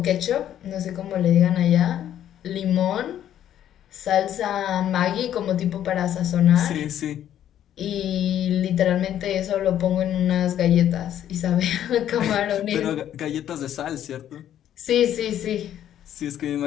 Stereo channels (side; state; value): right; quieter; 10.9 dB